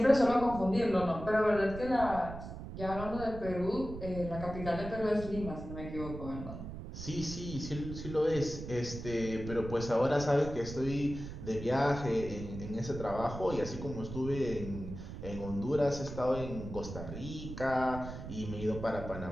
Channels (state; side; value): noise; right; rumble, 9 dB below the sound